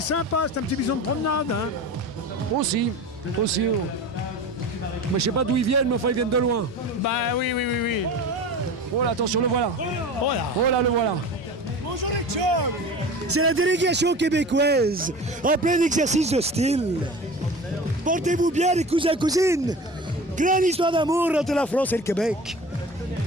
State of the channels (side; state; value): both; normal; correlation 0.35